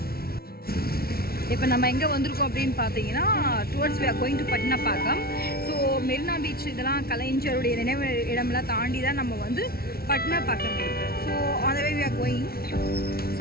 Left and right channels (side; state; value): right; late; 0.44 ms